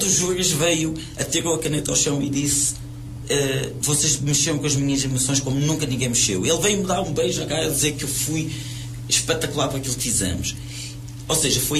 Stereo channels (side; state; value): both; identical; correlation 1.00